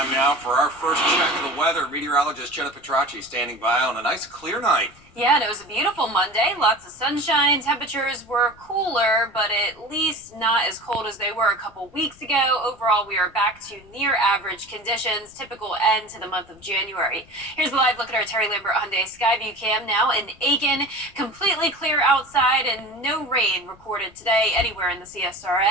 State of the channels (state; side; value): noise; left; rumble, 27 dB below the sound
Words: now for our first check of the weather. Meteorologist Jenna Petracci standing by on a nice clear night. Yeah, and it was a beautiful Monday. Lots of sunshine. Temperatures were cooler, but at least not as cold as they were a couple weeks ago. Overall, we are back to near average conditions, typical end to the month of January. Here's a live look at our Terry Lambert Hyundai Skyview Cam now in Aiken. Completely clear outside and no rain recorded today anywhere in the